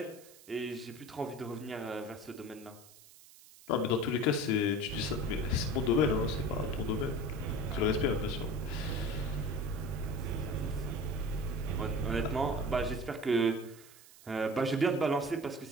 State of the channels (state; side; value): noise; right; hiss, 22 dB below the sound